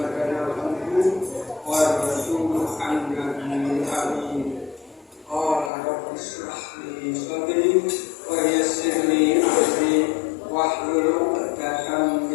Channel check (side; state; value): right; drops out; at 5.7 s